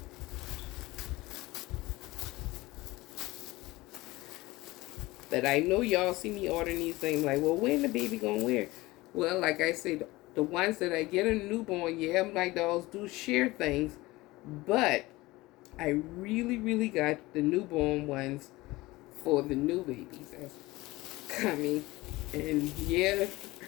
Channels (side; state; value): right; quieter; 20.1 dB